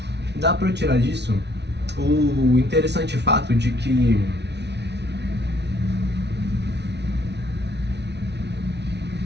Dá pra eu tirar disso o interessante fato de que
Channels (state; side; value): late; left; 0.50 ms